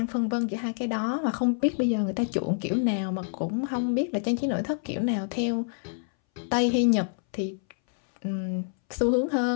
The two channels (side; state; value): right; silent; 60 dB below the other